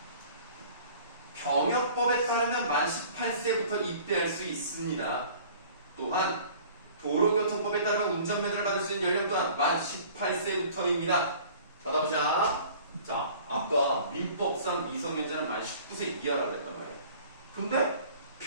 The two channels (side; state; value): both; inverted; correlation -0.48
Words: 병역법에 따르면 만 18세부터 입대할 수 있습니다. 또한 도로교통법에 따르면 운전면허를 받을 수 있는 연령 또한 만 18세부터입니다. 받아보자. 자, 아까 민법상 미성년자는 만 19세 이하라고 했단 말이에요. 근데